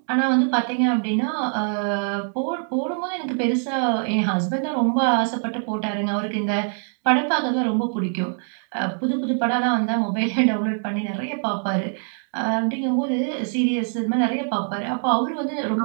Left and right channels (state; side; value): silent; left; 57 dB below the other